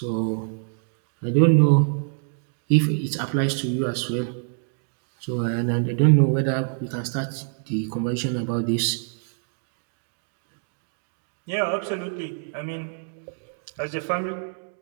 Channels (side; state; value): left; silent; 61 dB below the other